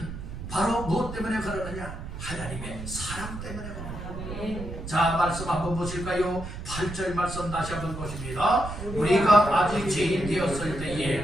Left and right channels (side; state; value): right; noise; rumble, 9 dB below the sound